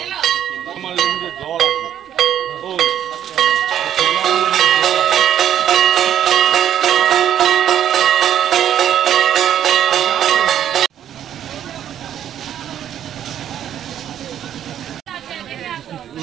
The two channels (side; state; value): left; quieter; 10.4 dB